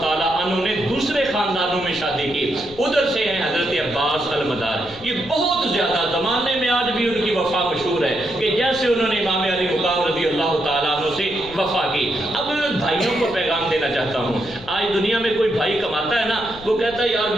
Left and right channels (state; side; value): noise; left; rumble, 18 dB below the sound